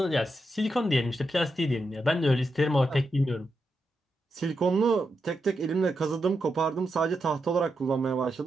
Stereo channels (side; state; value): both; normal; correlation 0.85